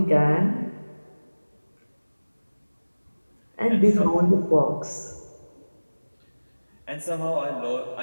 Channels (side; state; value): both; inverted; correlation -1.00